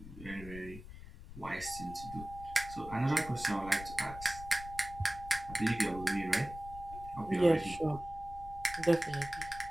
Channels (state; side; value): noise; left; rumble, 14 dB below the sound